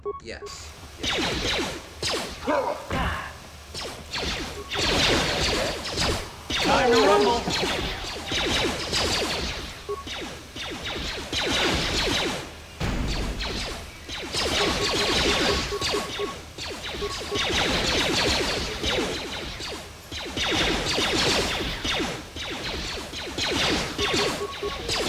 yes. Time to rumble!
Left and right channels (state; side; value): identical; both; correlation 1.00